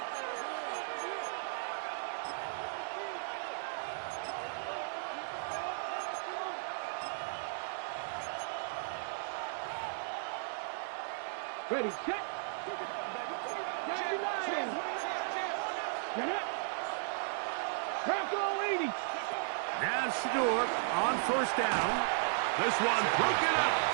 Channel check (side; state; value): left; silent; digital silence